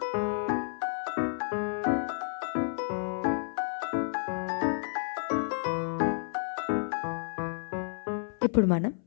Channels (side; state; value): right; silent; 57 dB below the other